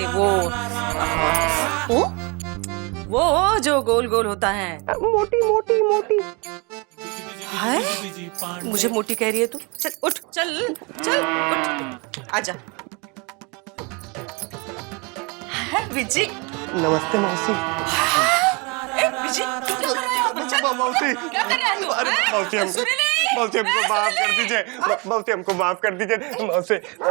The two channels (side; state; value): left; quieter; 29.9 dB